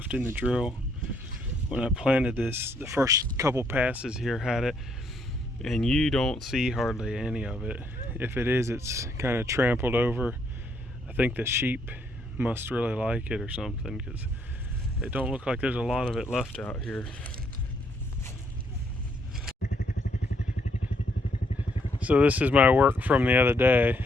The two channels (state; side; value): normal; both; correlation 0.71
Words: in the drill. When I planted this, the first couple passes here had it, and you don't see hardly any of it. If it is, it's kind of trampled over. I think the sheep must really like it or something, because it don't look like there's a lot of it left out here. So this is my work from the other day.